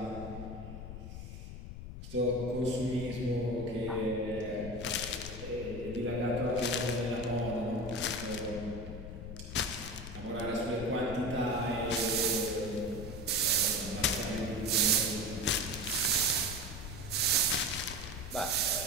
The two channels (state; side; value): noise; left; rumble, 9 dB below the sound